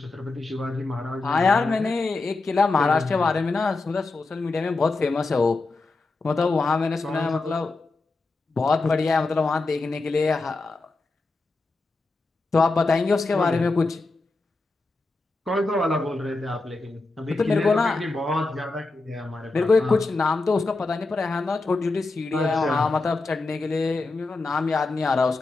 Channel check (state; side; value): quieter; right; 3.5 dB